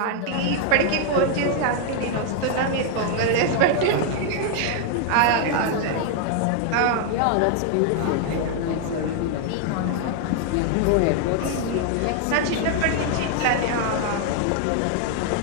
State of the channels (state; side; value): different; both; correlation 0.00